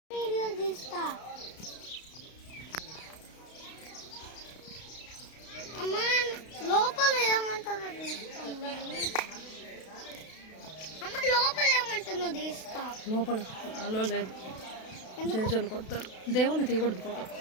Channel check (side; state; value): right; late; 32 ms